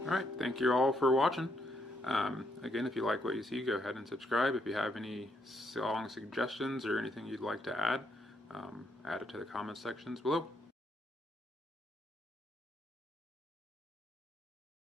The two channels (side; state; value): both; normal; correlation 0.75